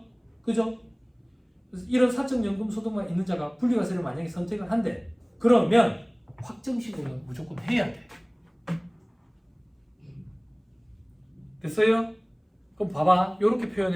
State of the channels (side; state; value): both; identical; correlation 1.00